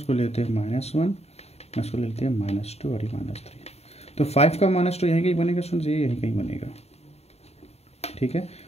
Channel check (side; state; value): right; late; 0.30 ms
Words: लेते हैं -1, इसको लेते हैं -2 और ये -3। तो 5 का -2 यहीं कहीं बनेगा स्टूडेंट्स, ये यहीं कहीं बनेगा, ठीक है।